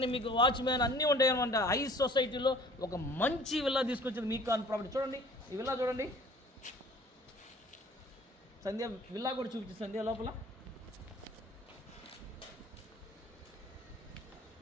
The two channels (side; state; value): both; normal; correlation 0.50